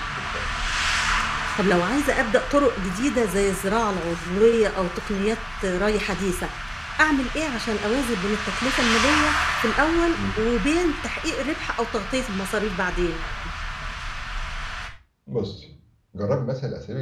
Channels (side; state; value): both; identical; correlation 1.00